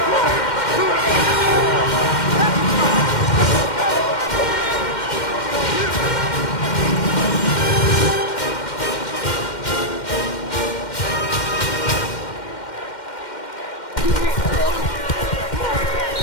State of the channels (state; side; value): late; right; 2.1 ms